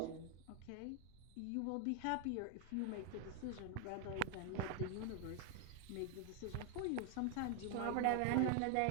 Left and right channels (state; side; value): different; both; correlation 0.00